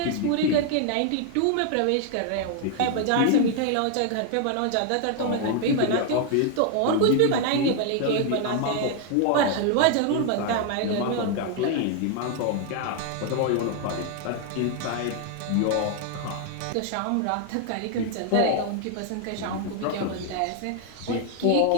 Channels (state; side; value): different; both; correlation 0.00